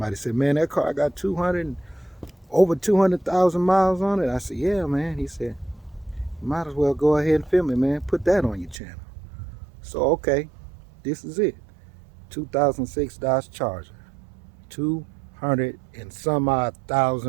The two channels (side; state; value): left; drops out; at 8.8 s